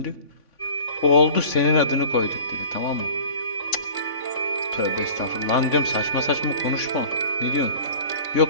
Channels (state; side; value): late; right; 3.5 ms